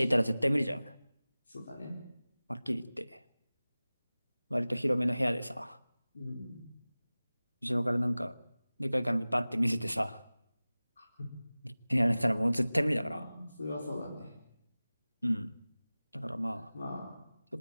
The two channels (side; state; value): both; inverted; correlation -0.98